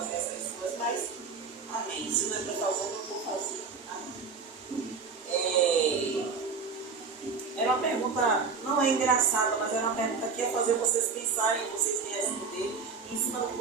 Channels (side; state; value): left; quieter; 5.0 dB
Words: essas coisas, mas amém. Se não é para fazer, eu não vou fazer. Amém. Era uma pergunta, não é engraçada, mas era uma pergunta que ia fazer vocês pensarem, vocês me responderem, e em cima do que